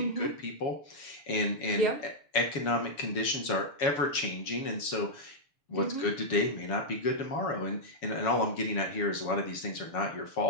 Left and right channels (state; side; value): late; right; 7.0 ms